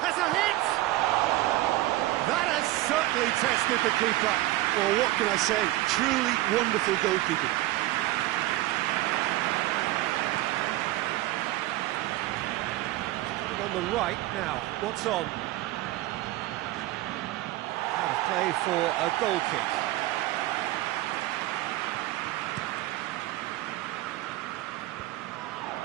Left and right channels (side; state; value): left; quieter; 17.1 dB